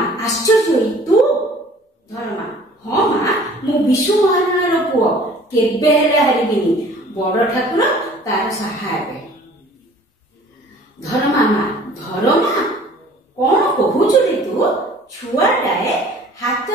ଆଶ୍ଚର୍ଯ୍ୟ ହୋଇ ତୁ? ଧରମା ହଁ ମା, ମୁଁ ବିଶ୍ୱ ମହାରଣାର ପୁଅ, କେବେ ହେଲେ ହାରିବିନି। ବଡ ଠାକୁର ତାର ସାହା ହେବେ। ଧରମା ମା ଧରମା କଣ କହୁଛୁ ରେ ତୁ? ଛୁଆଟାଏ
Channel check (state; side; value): normal; both; correlation 0.50